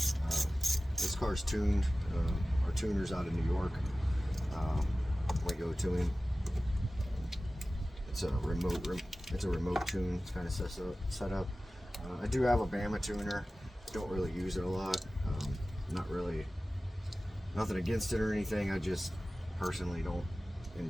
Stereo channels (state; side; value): normal; both; correlation 0.96